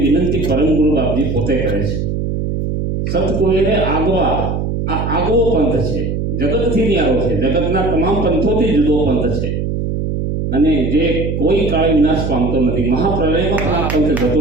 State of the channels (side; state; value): right; noise; hum, 2 dB below the sound